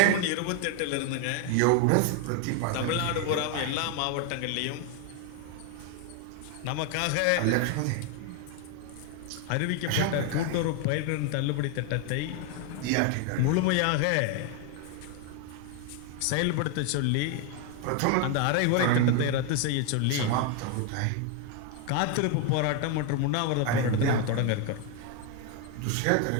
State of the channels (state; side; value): different; both; correlation 0.01